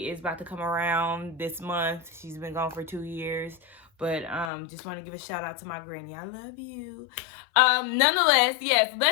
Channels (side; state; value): right; drops out; at 4.5 s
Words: is about to come around this month. She's been gone for 2 years. But just want to give a shout out to my granny. I love you. Nonetheless, yes,